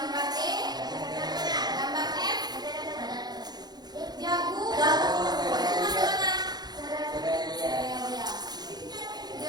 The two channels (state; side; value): late; left; 0.20 ms